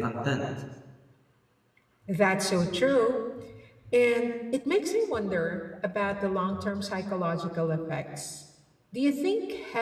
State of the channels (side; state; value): both; identical; correlation 1.00